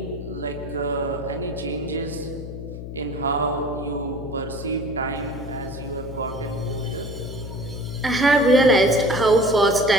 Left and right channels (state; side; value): noise; left; hum, 9 dB below the sound